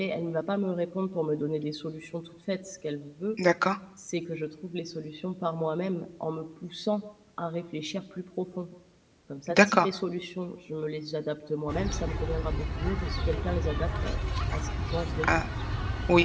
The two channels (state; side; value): identical; both; correlation 1.00